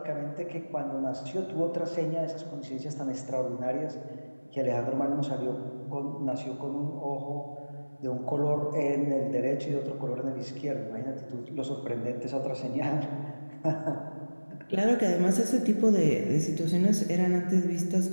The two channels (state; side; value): inverted; both; correlation -1.00